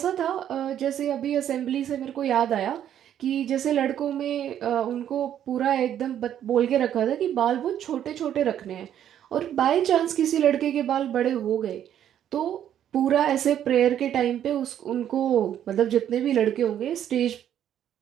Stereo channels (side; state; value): left; quieter; 10.3 dB